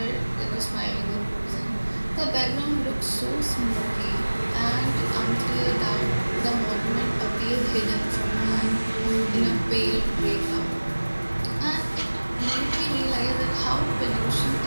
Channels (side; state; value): both; inverted; correlation -1.00